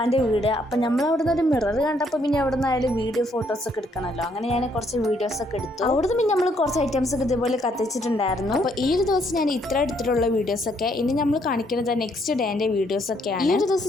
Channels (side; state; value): both; normal; correlation 0.70